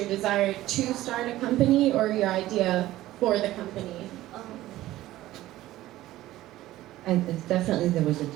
desire to start a company or your idea for the company? And definitely there was a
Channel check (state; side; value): quieter; left; 15.5 dB